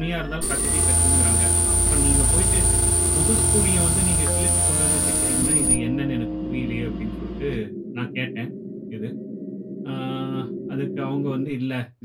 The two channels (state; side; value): identical; both; correlation 1.00